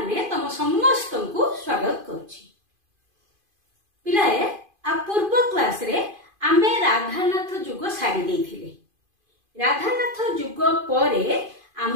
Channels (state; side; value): late; left; 2.5 ms